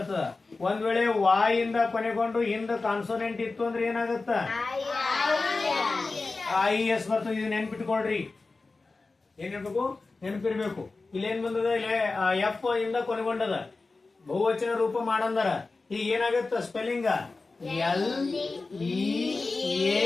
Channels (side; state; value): right; quieter; 3.7 dB